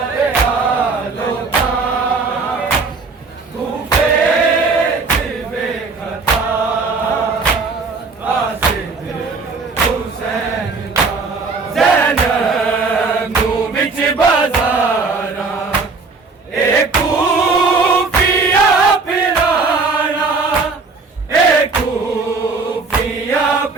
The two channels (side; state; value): left; quieter; 4.2 dB